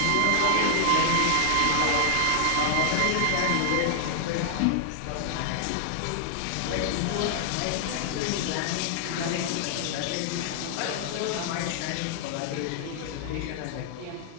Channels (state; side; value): different; both; correlation 0.00